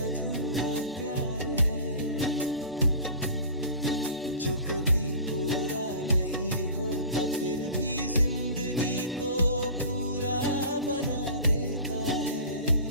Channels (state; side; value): inverted; both; correlation -0.40